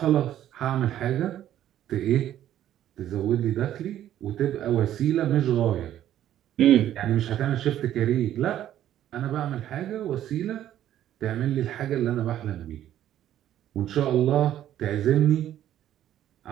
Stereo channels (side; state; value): left; quieter; 11.8 dB